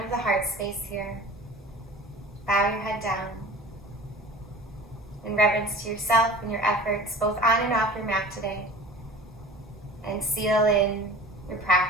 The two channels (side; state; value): both; normal; correlation 0.40